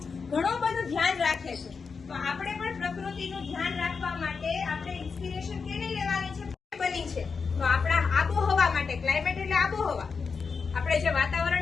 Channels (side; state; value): right; quieter; 5.3 dB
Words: ઘણું બધું ધ્યાન રાખે છે. તો આપણે પણ પ્રકૃતિનું ધ્યાન રાખવા માટે આપણે ઇન્સ્પિરેશન કેની લેવાની છે? બની છે તો આપણા આબોહવા માટે. ક્લાઇમેટ એટલે આબોહવા. આપણે જે